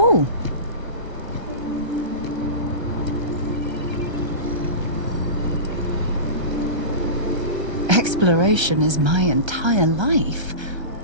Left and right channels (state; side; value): late; left; 1.3 ms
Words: Exploration is my entire life.